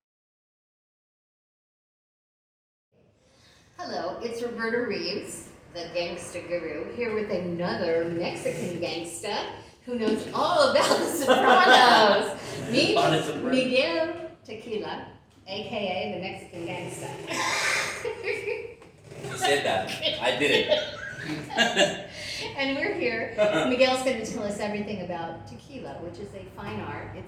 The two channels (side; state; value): both; identical; correlation 1.00